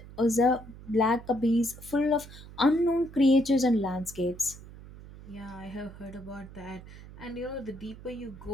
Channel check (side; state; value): right; noise; hum, 17 dB below the sound